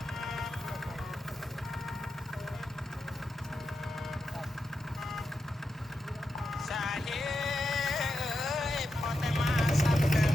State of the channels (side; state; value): both; normal; correlation 0.87